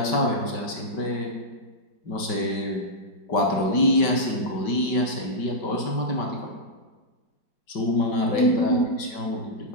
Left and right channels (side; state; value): right; late; 5.2 ms